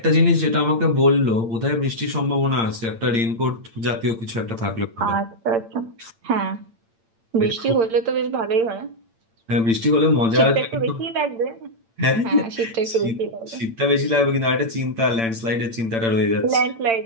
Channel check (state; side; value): late; left; 8.8 ms